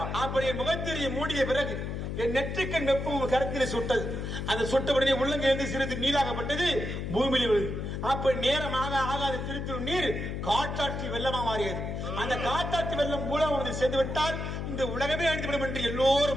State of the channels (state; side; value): noise; left; hum, 4 dB below the sound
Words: அப்படி என் முகத்திரையை மூடிய பிறகு என் நெற்றிக்கண் வெப்பம் கருத்தில் சுட்டது. அந்த சுட்டபடியே உள்ளங்கிருந்து சிறிது நீராகப்பட்டது, பூமியில் விழுது. அப்ப நேரமாக ஆகாத திருத்தூர் நீர் காற்றாற்றி வெள்ளமா மாறியது. அந்த காற்றாற்றி வெள்ளம் மூலம் வந்து சேர்ந்து விட்டால் இந்த உலகமே அழிந்துவிடும் என்று